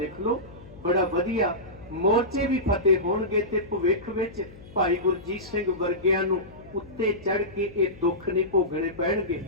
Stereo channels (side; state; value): left; noise; hum, 19 dB below the sound